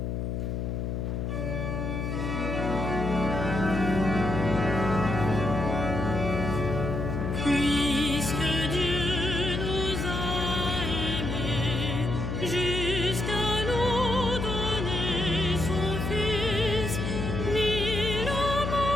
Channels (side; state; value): left; noise; hum, 2 dB below the sound